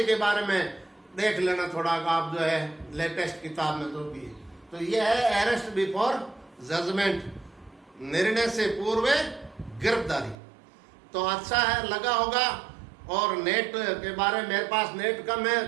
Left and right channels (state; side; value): drops out; left; at 10.4 s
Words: के बारे में देख लेना थोड़ा, आप जो है लेटेस्ट किताब में तो भी। तो ये है अरेस्ट बिफोर जजमेंट, निर्णय से पूर्व गिरफ्तारी। तो अच्छा है, लगा होगा। और नेट के बारे में मेरे पास नेट कम